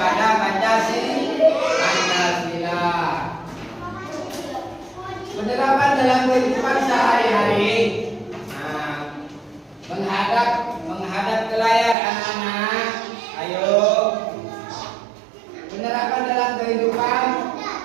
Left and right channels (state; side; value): drops out; left; at 12.0 s